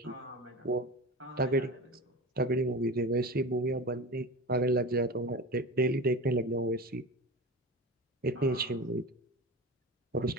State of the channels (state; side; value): normal; both; correlation 0.30